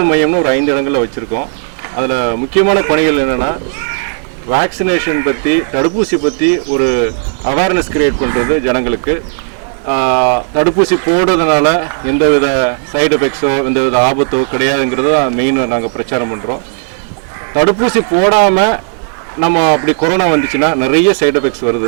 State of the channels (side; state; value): left; silent; digital silence